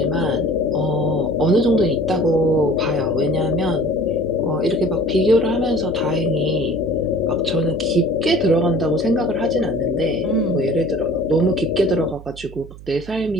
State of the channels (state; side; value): noise; right; hum, 17 dB below the sound